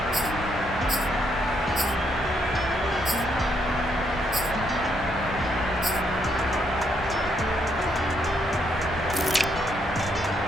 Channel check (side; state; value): both; normal; correlation 0.74